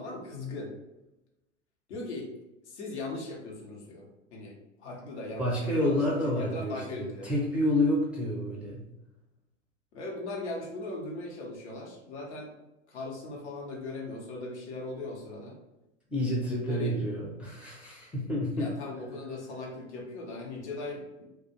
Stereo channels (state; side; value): normal; both; correlation 0.34